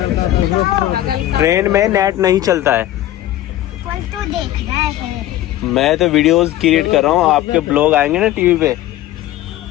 ट्रेन में नेट नहीं चलता है। तो देख रहा है। मैं तो वीडियोस क्रिएट कर रहा हूँ, आपके ब्लॉग आएंगे ना टीवी पे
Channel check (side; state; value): right; quieter; 14.1 dB